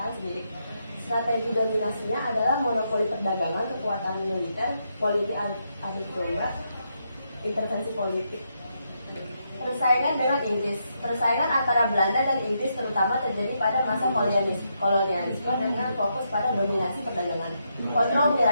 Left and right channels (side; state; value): both; inverted; correlation -0.80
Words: sendiri. Strategi dominasinya adalah monopoli perdagangan, kekuatan militer, politik adu domba, intervensi politik. Persaingan dengan Inggris. Persaingan antara Belanda dan Inggris terutama terjadi pada masa kolonialisme dengan fokus pada dominasi perdagangan, kontrol